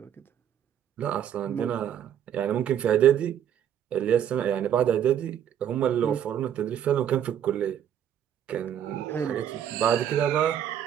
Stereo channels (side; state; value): left; quieter; 9.7 dB